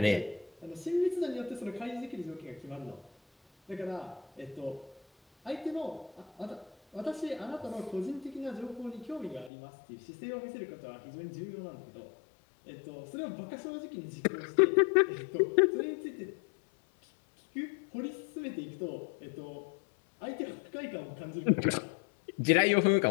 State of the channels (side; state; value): right; drops out; at 9.5 s